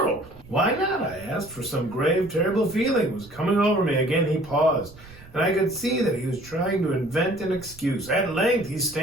"Why not?" I asked, for some grave, terrible feeling was coming over me. Again he paused, and I could see that he was trying to invent an excuse. At length he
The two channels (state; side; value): noise; right; rumble, 21 dB below the sound